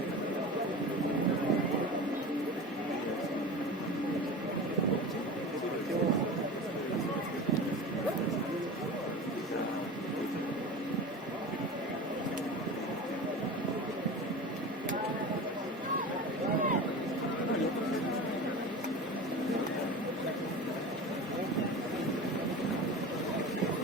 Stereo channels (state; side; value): normal; both; correlation 0.32